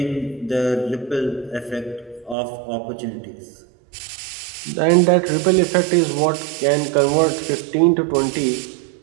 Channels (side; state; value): left; drops out; at 2.4 s